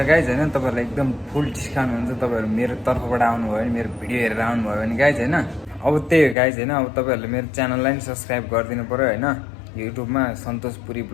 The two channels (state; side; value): drops out; right; at 6.4 s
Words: गाइज होइन। तपाईँहरूलाई एकदम फुल डिस्काउन्ट हुन्छ तपाईँहरू मेरो तर्फबाट आउनुभयो भने, मेरो भिडियो हेरेर आउनुभयो भने गाइज होइन। अब त्यही हो गाइज होइन। अब तपाईँहरूले मेरो च्यानललाई पनि सब्सक्राइब गरिदिनु पऱ्यो होइन। युट्युबमा सन्तोष पुरी